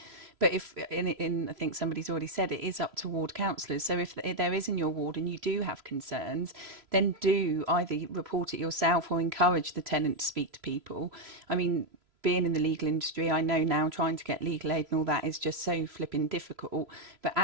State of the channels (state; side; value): late; left; 3.0 ms